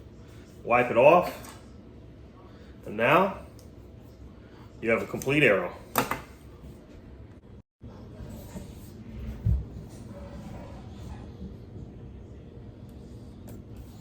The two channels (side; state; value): both; identical; correlation 1.00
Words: wipe it off, and now you have a complete arrow.